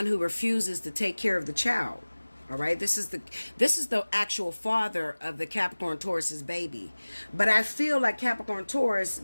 who refuses to take care of the child. All right? This is the actual father of the Capricorn Taurus's baby. But I feel like Capricorn Taurus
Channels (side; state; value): both; inverted; correlation -1.00